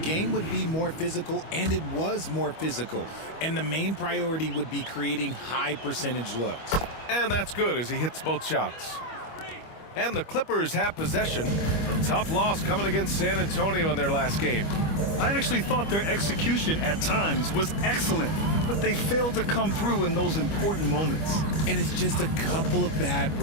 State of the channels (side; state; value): right; late; 25 ms